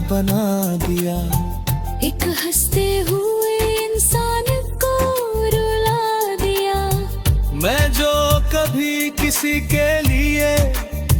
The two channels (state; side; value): identical; both; correlation 1.00